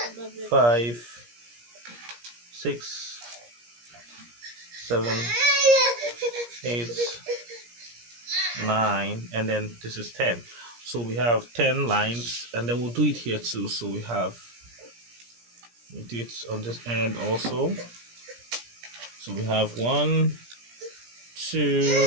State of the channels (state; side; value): late; left; 17 ms